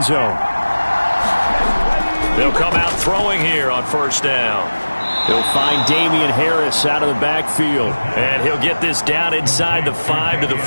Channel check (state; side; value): inverted; both; correlation -1.00